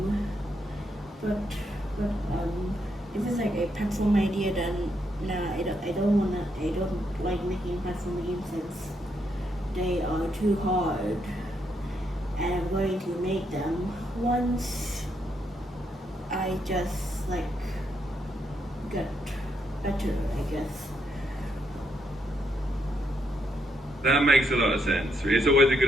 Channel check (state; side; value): normal; both; correlation 0.78